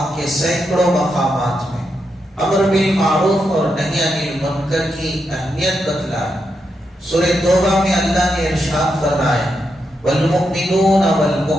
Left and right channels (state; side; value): normal; both; correlation 0.84